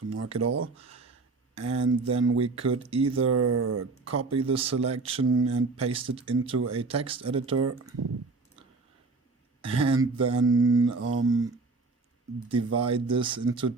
mark it all. And then we could either copy the selection and paste it into a text editor, and then divide this into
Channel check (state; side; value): quieter; left; 3.9 dB